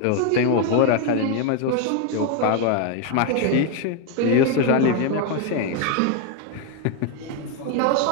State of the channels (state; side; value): different; both; correlation 0.01